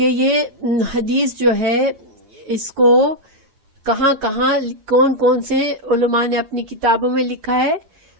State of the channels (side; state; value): left; late; 8.9 ms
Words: یہ حدیث جو ہے اس کو کہاں کون کون سے علماء نے اپنی کتابوں میں لکھا ہے.